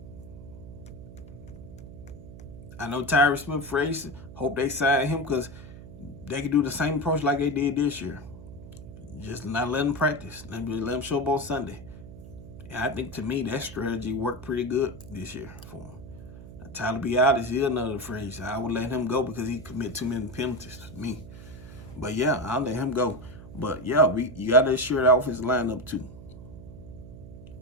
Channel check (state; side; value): noise; right; hum, 15 dB below the sound